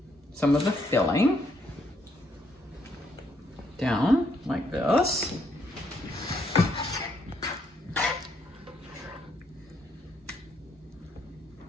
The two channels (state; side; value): normal; both; correlation 0.72